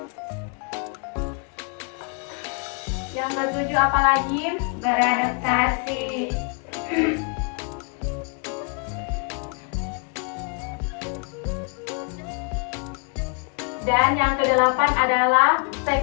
Yang ketujuh apa lagi? Beradaptasi. Dan yang kedelapan adalah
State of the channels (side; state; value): right; quieter; 37.8 dB